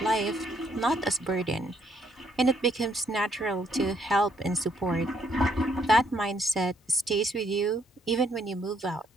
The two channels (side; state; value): both; normal; correlation 0.70